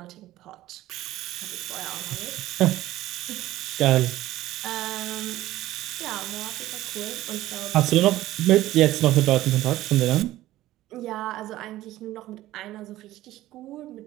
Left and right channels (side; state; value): left; quieter; 15.4 dB